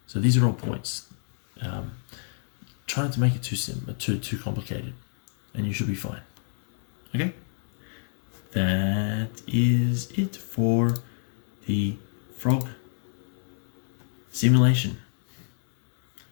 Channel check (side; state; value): right; silent; digital silence